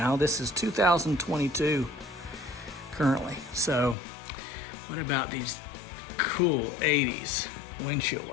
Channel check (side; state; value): right; drops out; at 4.0 s